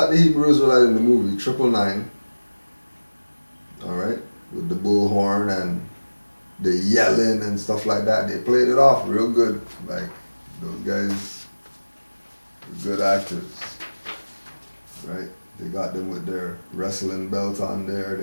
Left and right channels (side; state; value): both; inverted; correlation -1.00